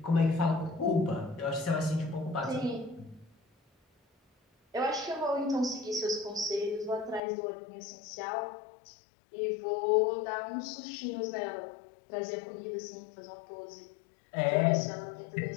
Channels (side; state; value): right; drops out; at 7.2 s